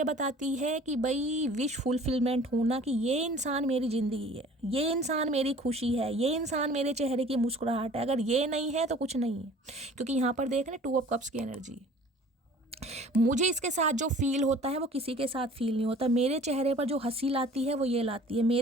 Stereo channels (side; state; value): both; normal; correlation 0.48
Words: बताती है कि भाई विश फुलफिलमेंट होना, कि ये इंसान मेरी ज़िंदगी है, ये इंसान मेरी खुशी है, ये इंसान मेरे चेहरे की मुस्कुराहट है। अगर ये नहीं है तो कुछ नहीं है, क्योंकि यहाँ पर देख रहे 2 ऑफ कप्स की एनर्जी। मुझे इसके साथ जो फील होता है वो किसी के साथ फील नहीं होता। मेरे चेहरे पर जो हंसी लाती है वो ये लाती है,